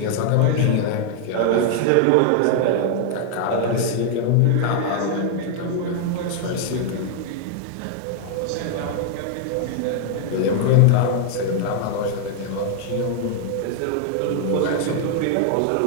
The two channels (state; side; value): different; both; correlation 0.00